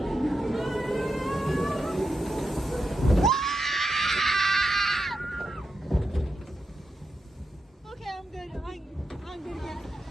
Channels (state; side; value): normal; both; correlation 0.87